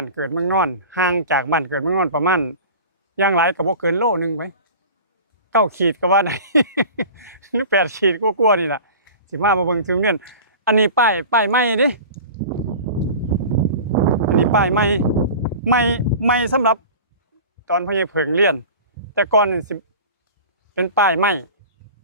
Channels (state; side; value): inverted; both; correlation -0.38